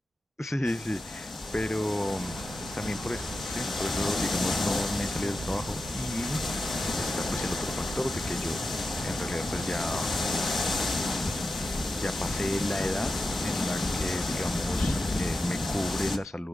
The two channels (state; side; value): normal; both; correlation 0.90